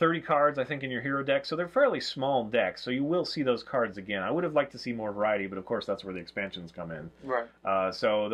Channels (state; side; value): identical; both; correlation 1.00